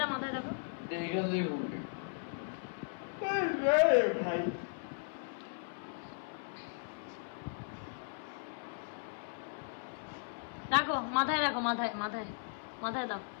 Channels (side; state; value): right; silent; 53 dB below the other